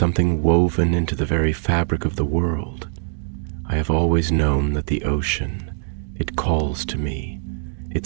woven into the very fabric of the world. I have always known that the ocean, it calls to me, it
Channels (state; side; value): silent; left; digital silence